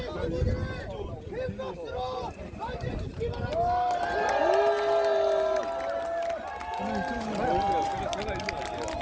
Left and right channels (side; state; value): both; identical; correlation 1.00